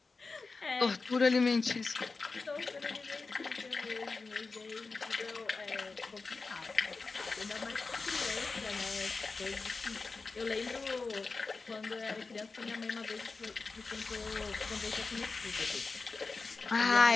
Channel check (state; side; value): quieter; right; 4.1 dB